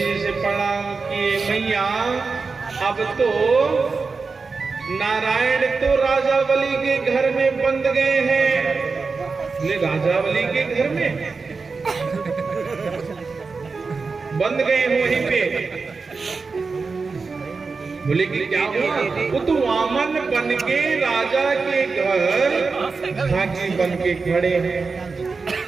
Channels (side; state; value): left; quieter; 4.5 dB